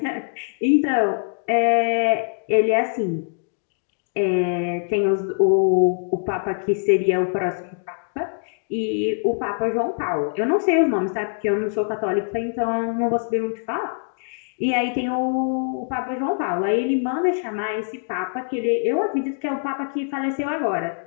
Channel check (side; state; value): right; silent; digital silence